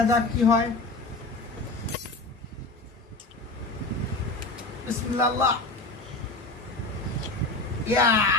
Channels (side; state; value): right; quieter; 3.1 dB